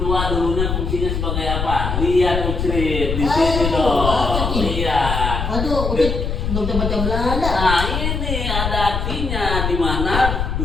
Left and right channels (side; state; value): left; noise; rumble, 2 dB below the sound